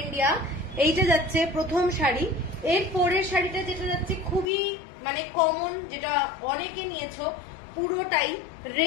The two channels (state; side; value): drops out; right; at 4.5 s